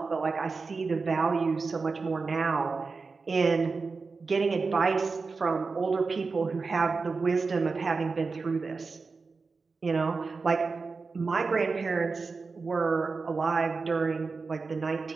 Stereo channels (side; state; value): left; quieter; 4.4 dB